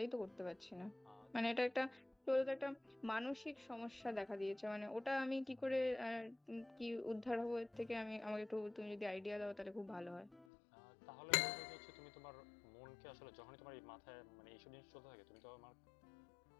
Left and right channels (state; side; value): drops out; right; at 10.5 s